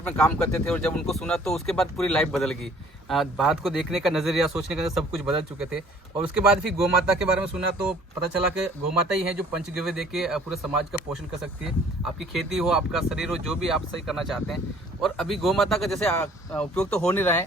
में काम करते थे और जब उनको सुना तो उसके बाद पूरी लाइफ बदल गई। बात को देखने का नज़रिया, सोचने का सब कुछ बदल चुके थे। और उसके बाद फिर गौ माता के बारे में सुना तो पता चला कि गौ माता ही है जो पंचगव्य दे के पूरे समाज का पोषण कर सकती है। आपकी खेती हो, आपका शरीर हो, जो भी आप सही करना चाहते हैं। और अभी गौ माता का जैसे उपयोग तो हो नहीं रहा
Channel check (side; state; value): both; normal; correlation 0.55